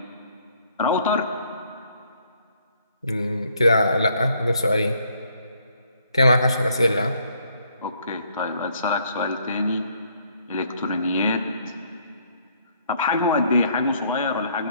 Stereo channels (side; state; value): both; inverted; correlation -0.66